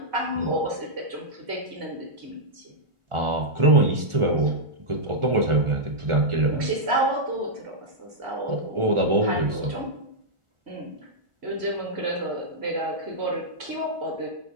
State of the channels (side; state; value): left; late; 1.8 ms